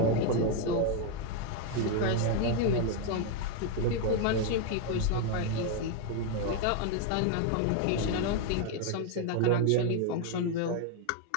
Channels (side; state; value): both; different; correlation 0.01